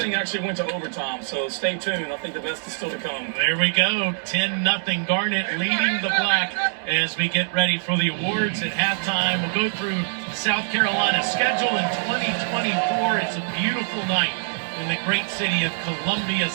actually went to overtime. So stay tuned. I think the best is still to come. There we go. 10-0 Garnet leading the Black as we get ready for the awards at halftime. We'll go through South Carolina's schedule in 2024. It's a beautiful night in the great city of Columbia,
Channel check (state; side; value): silent; left; digital silence